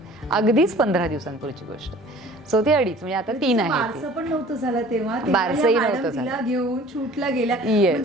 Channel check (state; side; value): normal; both; correlation 0.48